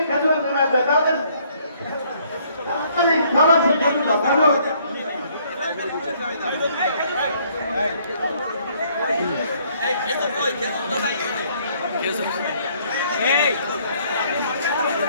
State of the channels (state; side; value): inverted; both; correlation -0.64